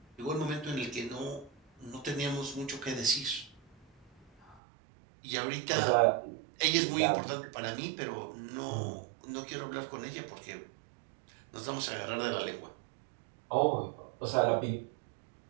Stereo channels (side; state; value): left; drops out; at 4.6 s